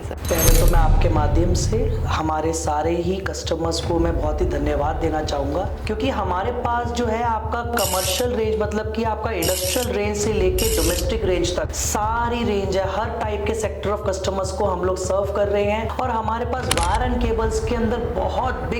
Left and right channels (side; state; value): both; identical; correlation 1.00